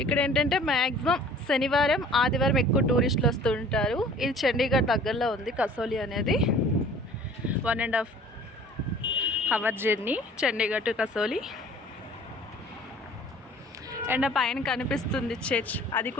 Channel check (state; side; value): normal; both; correlation 0.50